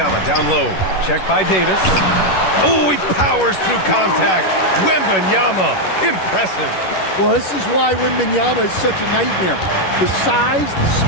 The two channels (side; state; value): right; late; 11 ms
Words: down low. Check by Davis. Oh, he powers through contact. Wembanyama. Impressive. Well, this is why Wembanyama is such a nightmare. The size, the